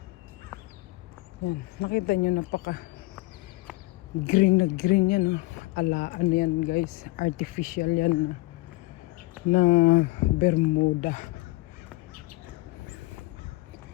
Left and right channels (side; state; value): right; quieter; 21.7 dB